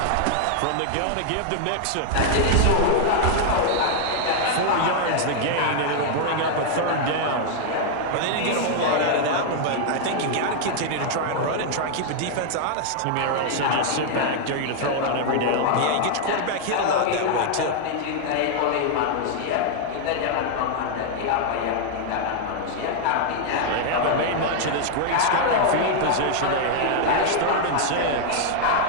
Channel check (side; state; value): both; different; correlation 0.00